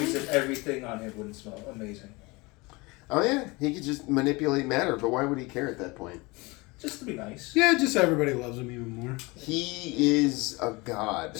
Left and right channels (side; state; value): right; quieter; 24.7 dB